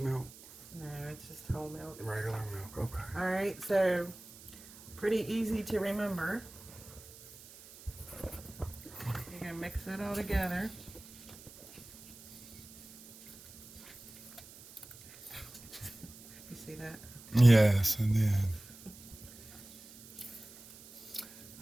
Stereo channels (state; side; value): noise; right; hiss, 19 dB below the sound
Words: No, it's just whole milk. Regular milk. Okay. Alright, so pretty easy to remember. You're going to mix it all together. You see that? Yes, I did.